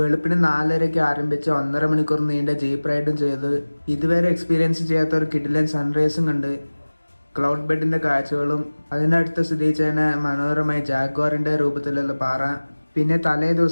4:30 ആരംഭിച്ച 1.5 മണിക്കൂർ നീണ്ട ജീപ്പ് റൈഡും ചെയ്ത് ഇതുവരെ എക്സ്പീരിയൻസ് ചെയ്യാത്ത ഒരു കിടിലൻ സൺറൈസും കണ്ട് ക്ലൗഡ് ബെഡിന്റെ കാഴ്ചകളും അതിനടുത്ത് സ്ഥിതി ചെയ്യുന്ന മനോഹരമായ ജാഗ്വാറിന്റെ രൂപത്തിലുള്ള പാറ, പിന്നെ തലേ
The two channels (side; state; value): both; inverted; correlation -1.00